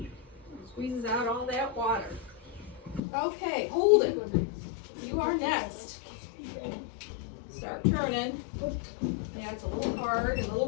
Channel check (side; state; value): right; drops out; at 3.0 s